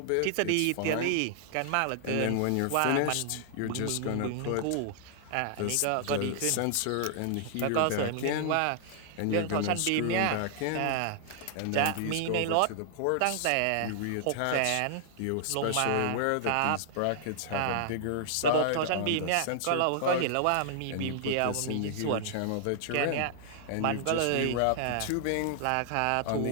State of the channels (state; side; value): different; both; correlation -0.01